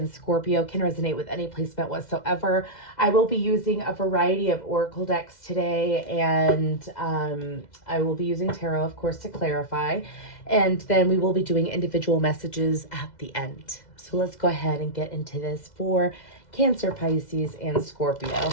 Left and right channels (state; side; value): late; right; 2.0 ms